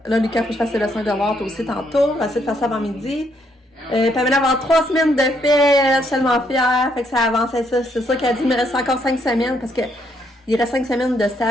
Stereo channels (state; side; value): normal; both; correlation 0.73